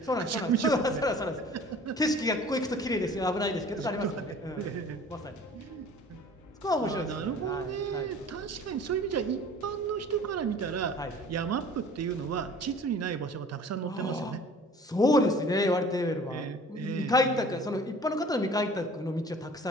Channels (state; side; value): normal; both; correlation 0.47